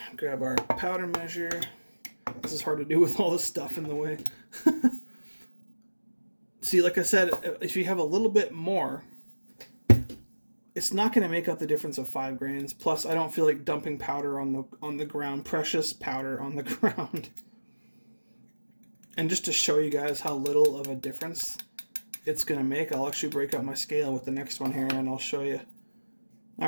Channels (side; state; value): both; inverted; correlation -1.00